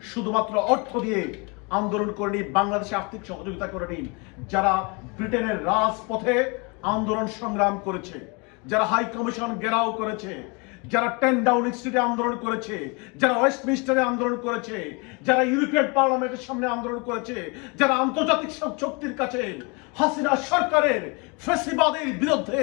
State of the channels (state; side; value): quieter; right; 30.6 dB